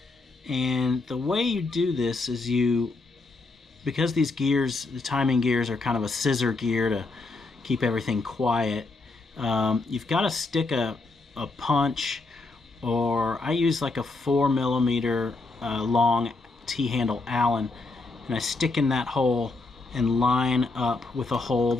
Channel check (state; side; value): quieter; right; 3.5 dB